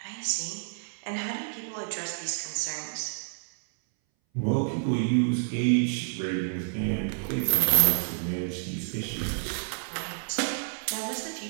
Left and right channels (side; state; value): left; silent; 58 dB below the other